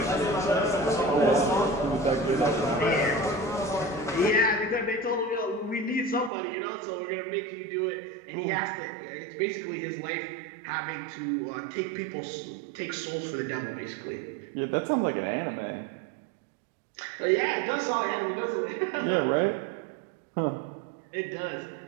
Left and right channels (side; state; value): left; drops out; at 6.3 s